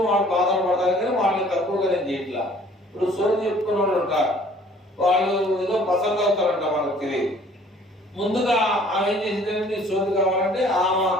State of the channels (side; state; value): both; normal; correlation 0.55